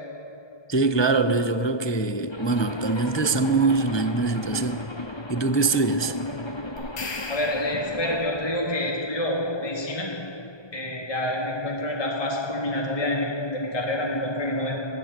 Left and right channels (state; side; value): late; right; 1.2 ms